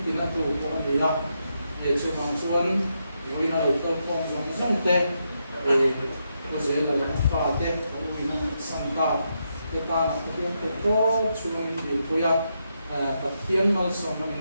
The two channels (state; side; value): inverted; both; correlation -0.82